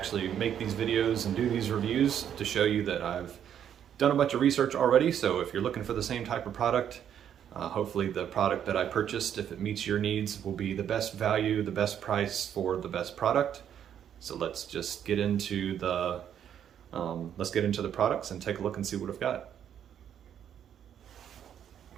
make these videos and do these reviews to show you that I've done a bunch of research already. So if you're looking for the same type of product, hopefully the product that I purchased, if it meets your needs, will be the best value, the best price for the best product. So let's just get into the products and take a look and see what I've got.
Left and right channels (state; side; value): quieter; left; 9.4 dB